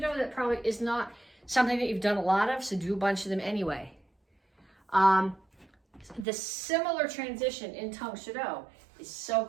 that probably is not something that you've done a lot of, so do a bunch of them anyway. The similar transition in Tang Soo Do is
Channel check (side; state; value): left; drops out; at 6.2 s